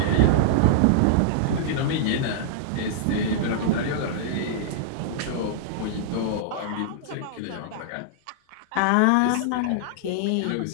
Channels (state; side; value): different; both; correlation -0.01